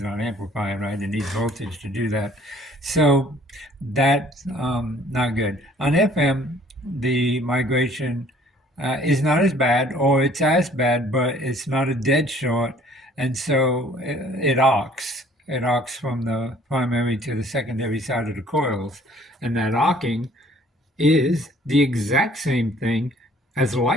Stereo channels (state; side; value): normal; both; correlation 0.56